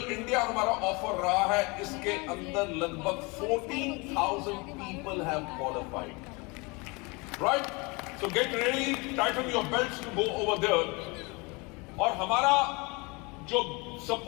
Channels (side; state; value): right; quieter; 27.6 dB